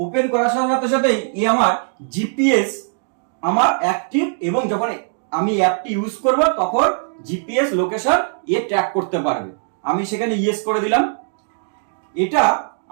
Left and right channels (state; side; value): silent; left; digital silence